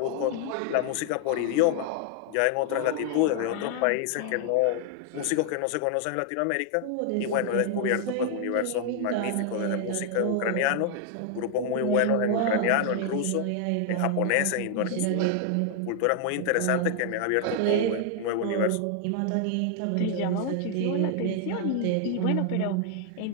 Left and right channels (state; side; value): different; both; correlation 0.00